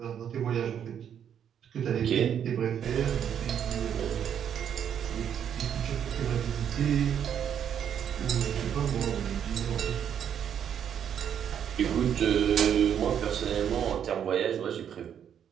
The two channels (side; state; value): left; quieter; 8.8 dB